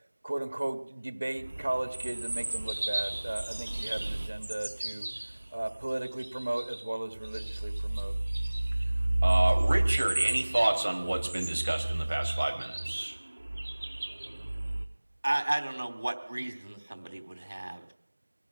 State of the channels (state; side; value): inverted; both; correlation -1.00